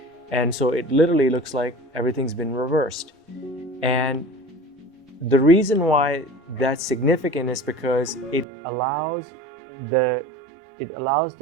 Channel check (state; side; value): drops out; left; at 8.5 s